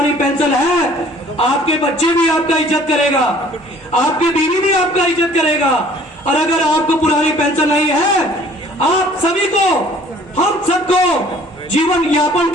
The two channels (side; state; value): both; normal; correlation 0.54